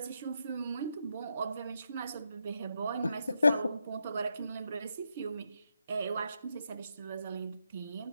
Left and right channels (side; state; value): both; inverted; correlation -0.83